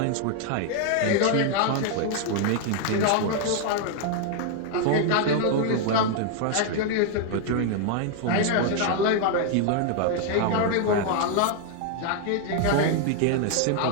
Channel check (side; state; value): both; different; correlation 0.00